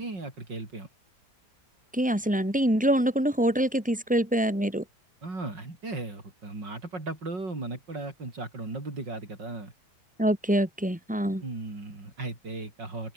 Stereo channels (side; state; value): both; normal; correlation 0.58